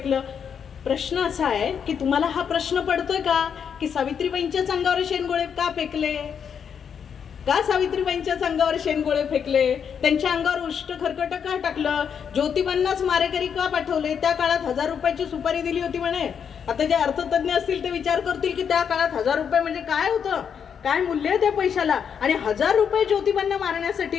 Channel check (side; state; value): right; quieter; 7.4 dB